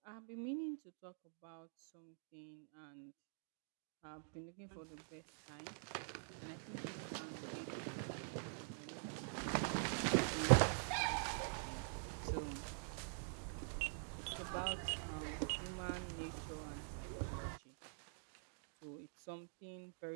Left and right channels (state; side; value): silent; left; digital silence